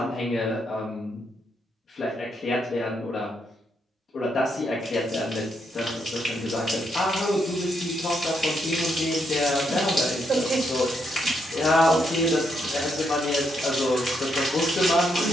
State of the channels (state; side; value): normal; both; correlation 0.78